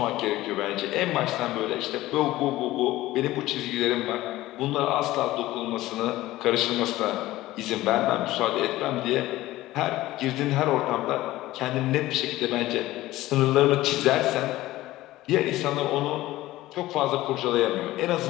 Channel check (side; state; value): right; quieter; 16.7 dB